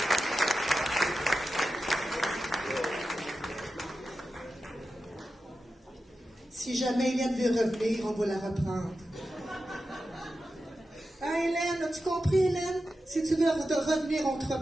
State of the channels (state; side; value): normal; both; correlation 0.91